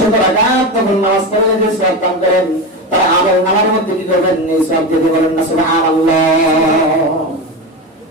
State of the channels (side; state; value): both; normal; correlation 0.20